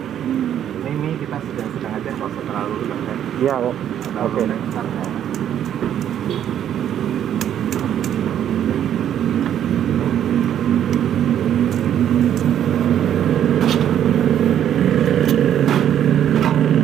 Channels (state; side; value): quieter; left; 10.2 dB